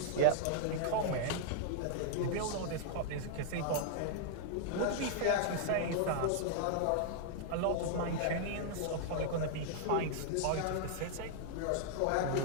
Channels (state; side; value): different; both; correlation -0.01